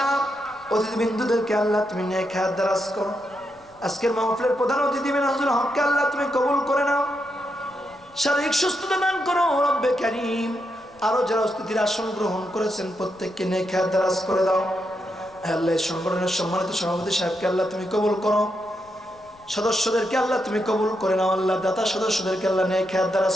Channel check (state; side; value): noise; left; rumble, 29 dB below the sound